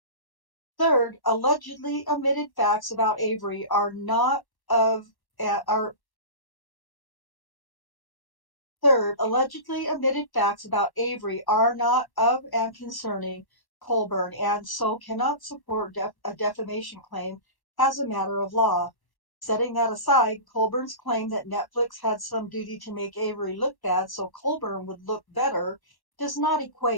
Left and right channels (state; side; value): late; right; 1.1 ms